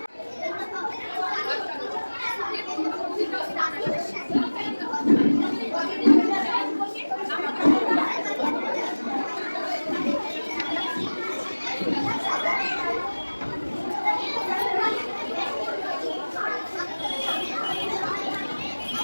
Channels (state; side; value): inverted; both; correlation -1.00